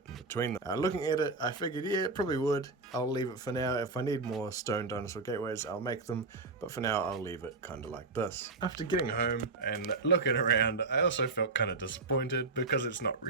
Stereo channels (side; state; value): left; quieter; 3.8 dB